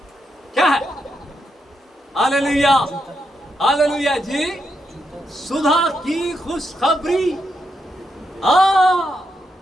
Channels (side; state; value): both; normal; correlation 0.82